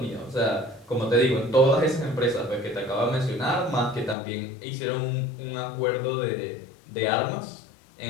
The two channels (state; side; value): drops out; right; at 4.2 s